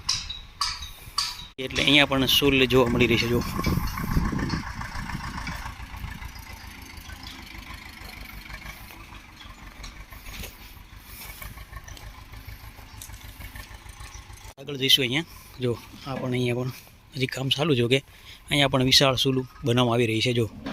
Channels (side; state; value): both; identical; correlation 1.00